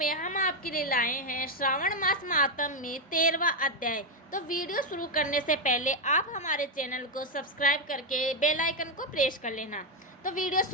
हम आपके लिए लाए हैं श्रावण मास महात्म्य में 13वां अध्याय। तो वीडियो शुरू करने से पहले आप हमारे चैनल को सब्सक्राइब करके बेल आइकन को प्रेस कर लेना। तो वीडियो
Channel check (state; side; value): normal; both; correlation 0.04